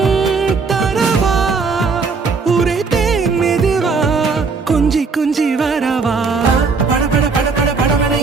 தரவா உரைத்தேன் மெதுவா கொஞ்சி கொஞ்சி வரவா பட பட பட பட படவன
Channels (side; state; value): left; quieter; 4.7 dB